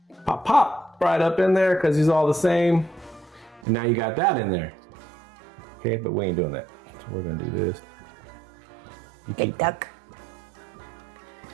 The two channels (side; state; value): left; drops out; at 3.7 s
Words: pop right up in there because he's all the same. And now you got that in there. Okay, but we ain't doing that. So we're gonna do this. You Big duck.